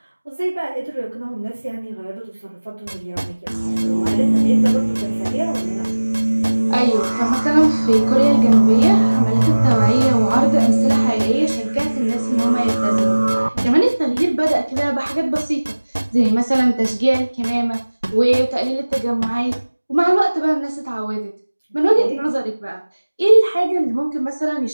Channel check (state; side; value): inverted; both; correlation -1.00